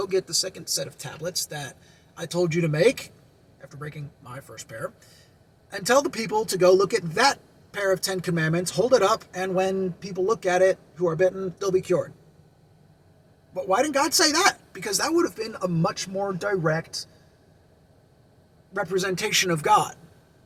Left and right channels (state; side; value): identical; both; correlation 1.00